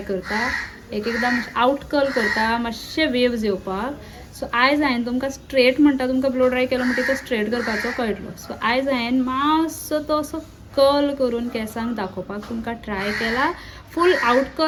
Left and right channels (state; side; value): identical; both; correlation 1.00